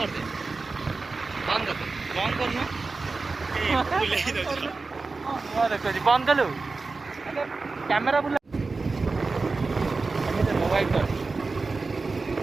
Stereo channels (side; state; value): left; quieter; 3.9 dB